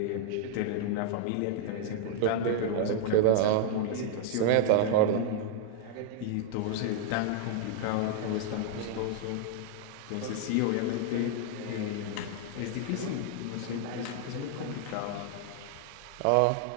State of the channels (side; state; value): both; different; correlation 0.00